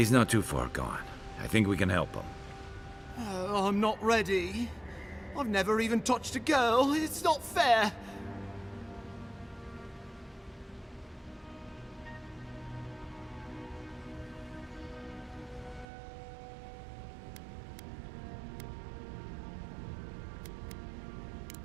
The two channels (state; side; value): drops out; left; at 15.9 s